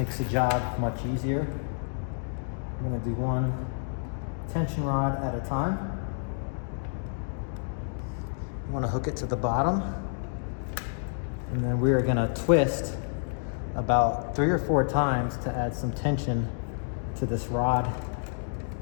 the job much easier. I'm gonna do one tension rod at a time. You want to hook it to the bottom, and then we are going to twist about 3 or 4 times to add some tension to this rod.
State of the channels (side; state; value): right; silent; digital silence